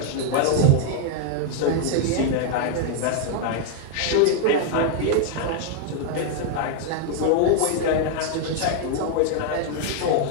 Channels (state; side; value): different; both; correlation 0.00